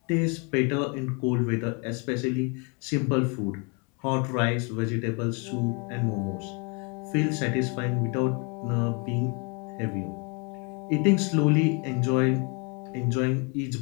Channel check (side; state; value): right; quieter; 33.5 dB